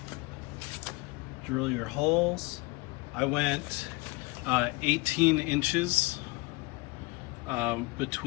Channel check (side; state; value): right; quieter; 24.4 dB